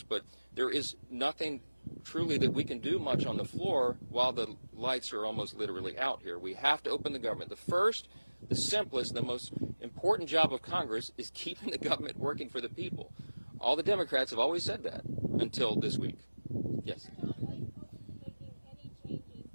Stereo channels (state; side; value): inverted; both; correlation -1.00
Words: but there is nothing truly that we can do much on the floor while the lights are almost literally out here. We have to open the government. The first, the simplest, the most important job of Congress is keeping the government working for the people. All the Democrats have always said that until this week. Yes.